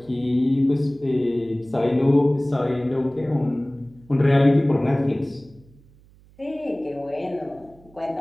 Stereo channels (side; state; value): right; noise; hum, 27 dB below the sound